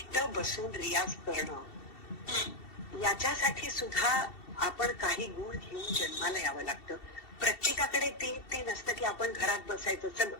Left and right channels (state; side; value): late; right; 2.7 ms